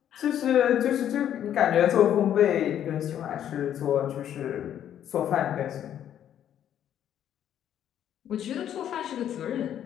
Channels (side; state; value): right; quieter; 10.3 dB